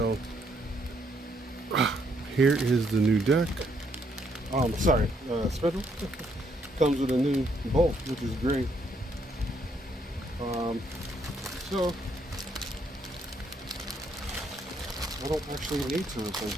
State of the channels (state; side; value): normal; both; correlation 0.72